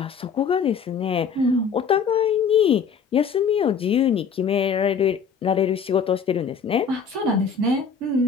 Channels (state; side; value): quieter; right; 6.2 dB